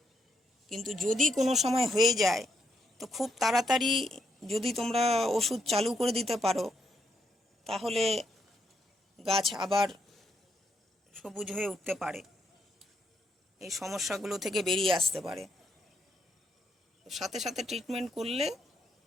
কিন্তু যদি কোনো সময় হয়ে যায়, তো খুব তাড়াতাড়ি যদি তোমরা ওষুধ চালু করে দিতে পারো, তাহলে গাছ আবার সবুজ হয়ে উঠতে পারে, এই সমস্যাগুলো থেকে বেরিয়ে আসতে পারে। সাথে সাথে ট্রিটমেন্ট করলে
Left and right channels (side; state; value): both; normal; correlation 0.77